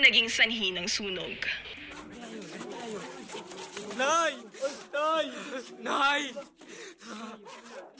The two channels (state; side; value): identical; both; correlation 1.00